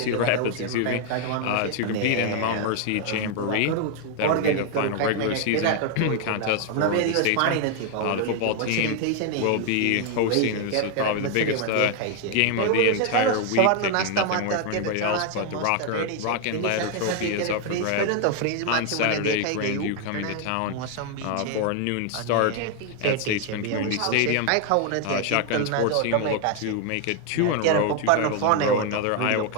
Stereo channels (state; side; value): different; both; correlation 0.00